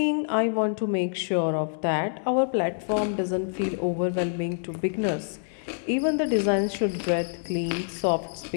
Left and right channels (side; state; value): right; silent; 60 dB below the other